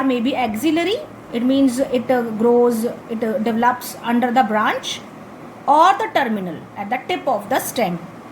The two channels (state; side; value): identical; both; correlation 1.00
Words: may be axillary, it means it develops under the branch, or the terminal, at the tip of the stem.